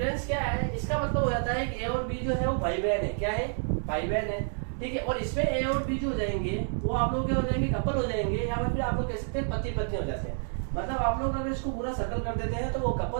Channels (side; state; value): left; silent; 58 dB below the other